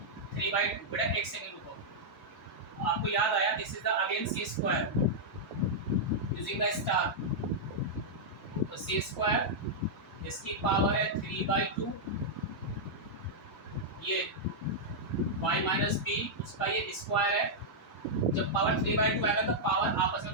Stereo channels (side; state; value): both; normal; correlation -0.07